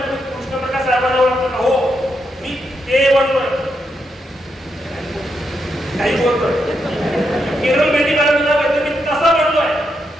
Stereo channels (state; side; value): normal; both; correlation 0.82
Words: तुम्ही कृष्णप्रकाश साहेबांना ओळखतो का? हो मी ते बनतोय काही बोलतोय. केरळ मेहंदी काढायला मी कसा बनतोय